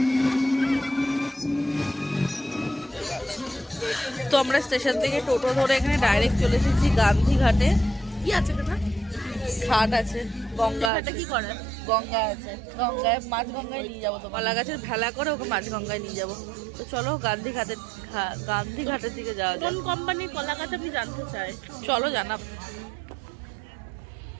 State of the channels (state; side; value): drops out; left; at 10.9 s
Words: তো আমরা স্টেশন থেকে টোটো ধরে এখানে ডাইরেক্ট চলে এসেছি গান্ধীঘাটে। কি আছে কথা? ঘাট আছে, গঙ্গা আছে। কি করে? গঙ্গা আছে, গঙ্গায় মাছ গঙ্গায় নিয়ে যাবো। তো মালা গাছের ভেলা করে ওকে মাছ গঙ্গায় নিয়ে যাবো। তো চলো গান্ধীঘাটের দিকে যাওয়া যায়। কোন কোম্পানির কলা গাছ আমি জানতে চাই। চলো জানাব।